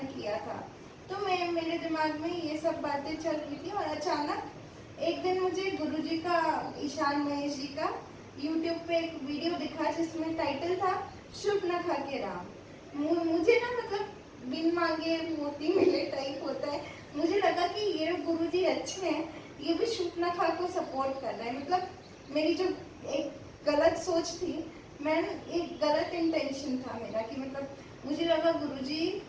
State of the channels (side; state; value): both; identical; correlation 1.00